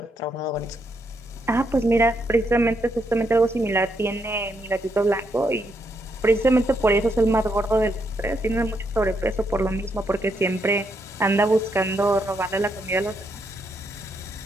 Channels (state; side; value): normal; both; correlation 0.78